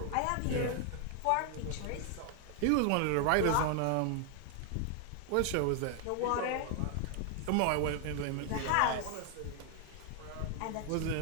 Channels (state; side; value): different; both; correlation 0.00